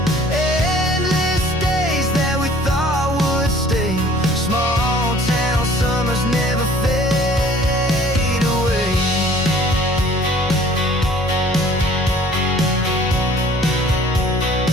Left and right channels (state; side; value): normal; both; correlation 0.53